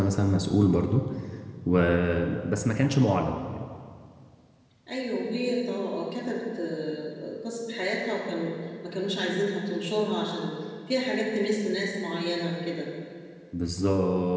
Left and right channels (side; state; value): both; identical; correlation 1.00